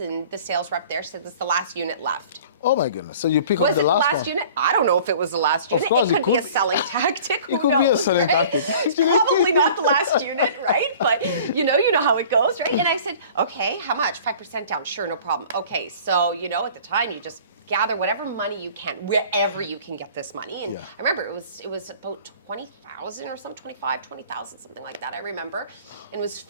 and the sales rep there said, this is the last unit left. Oh my goodness. So you pick up Was the it the last last one? unit? I don't know if it was the last unit. course, it could be a selling tactic. It could be a selling tactic. It's probably not the last unit, right? But you know how it goes, right? And I said, okay, how much? 5% down. Sure, no problem. Okay, so you know, at the time, you just gather whatever money you can, wherever you can get this money. And I remember it was about 20,000 or something, 25, 20,000, something like that. I remember. And it was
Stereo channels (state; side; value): inverted; both; correlation -0.46